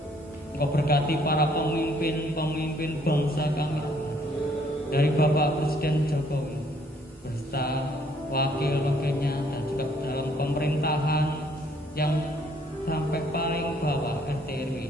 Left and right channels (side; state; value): both; normal; correlation 0.64